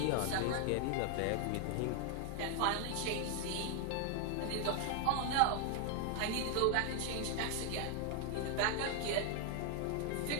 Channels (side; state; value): both; different; correlation 0.00